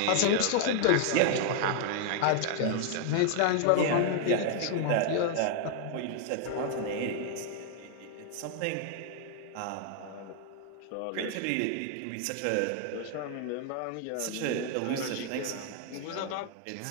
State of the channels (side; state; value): both; different; correlation 0.00